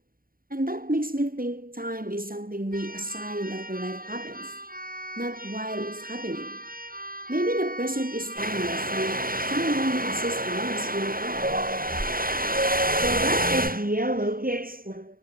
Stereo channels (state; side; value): late; left; 0.42 ms